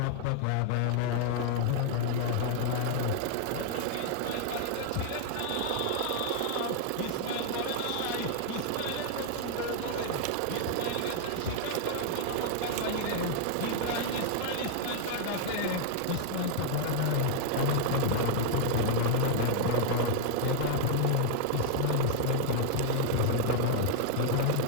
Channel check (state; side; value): different; both; correlation -0.01